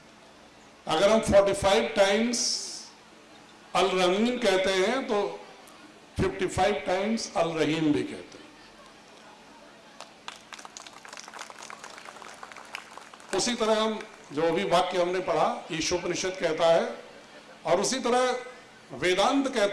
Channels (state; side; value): identical; both; correlation 1.00